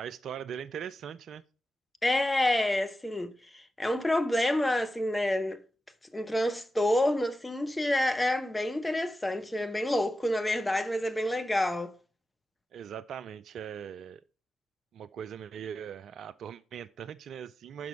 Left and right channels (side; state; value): both; normal; correlation 0.92